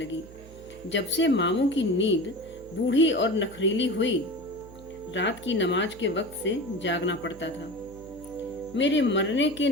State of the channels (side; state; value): right; noise; hum, 19 dB below the sound